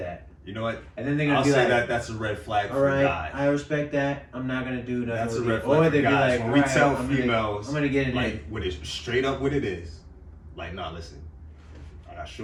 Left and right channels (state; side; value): identical; both; correlation 1.00